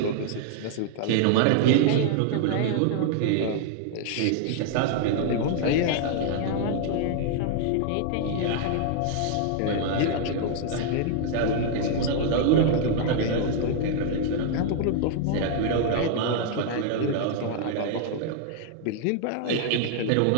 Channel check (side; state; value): both; different; correlation 0.00